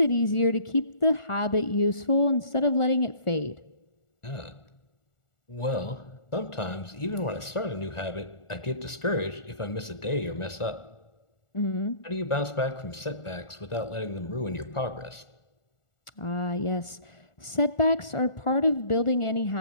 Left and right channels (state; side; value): late; right; 1.4 ms